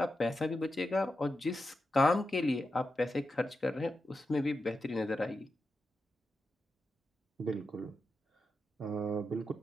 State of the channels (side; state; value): both; normal; correlation 0.88